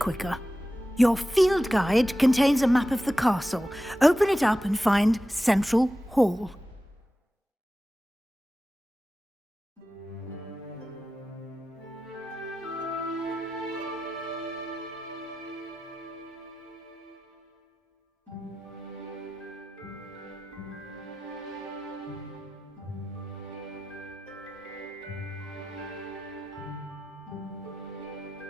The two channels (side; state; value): both; normal; correlation 0.93